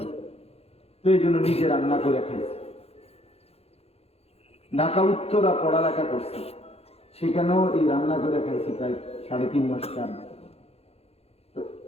তো এই জন্য নিজে রান্না করে খাইছি। ঢাকা উত্তরা পড়ালেখা করছি, সেখানেও এই রান্না করে খাইছি প্রায় 3.5 মাস, 4 মাস। তো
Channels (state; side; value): late; right; 0.29 ms